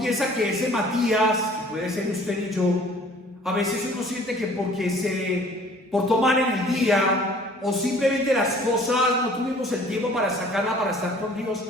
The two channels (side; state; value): both; normal; correlation 0.52